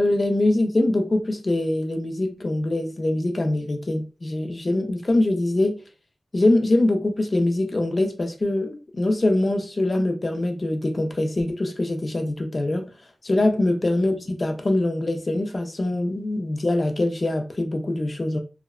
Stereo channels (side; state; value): both; normal; correlation 0.98